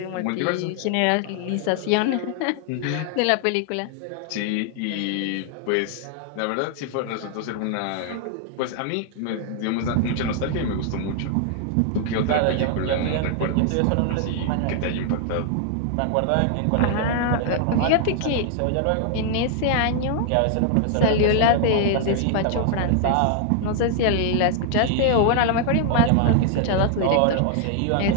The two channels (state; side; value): different; both; correlation 0.00